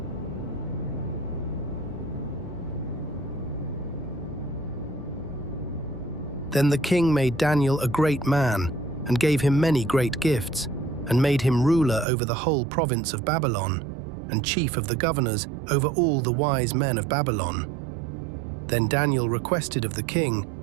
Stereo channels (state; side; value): drops out; left; at 12.1 s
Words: Then the king made Daniel a great man, and gave him many great gifts, and made him ruler over the whole province of Babylon, and chief of the governors over all the wise men of Babylon. Then Daniel requested of the king,